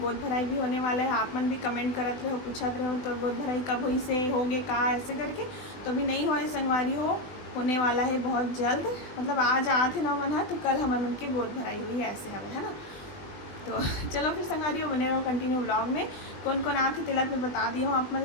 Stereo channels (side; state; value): right; late; 20 ms